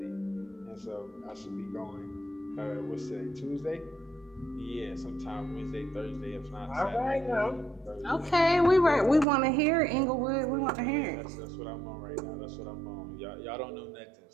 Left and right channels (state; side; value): drops out; left; at 9.2 s